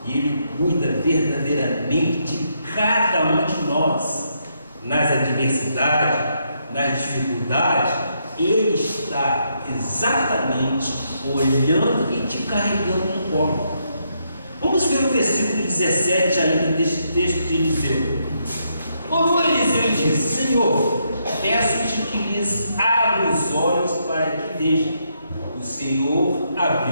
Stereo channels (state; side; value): inverted; both; correlation -0.77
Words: e Ele cuida verdadeiramente de cada um de nós, nas adversidades, nas dificuldades. Ele está exatamente olhando e te carregando no colo. Vamos ver o versículo 17 ainda deste texto de Eliseu. Orou Eliseu e disse: Senhor, peço-te que lhes abra os olhos para que vejam. O Senhor